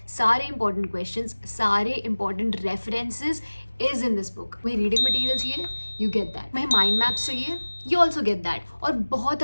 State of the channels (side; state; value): both; inverted; correlation -1.00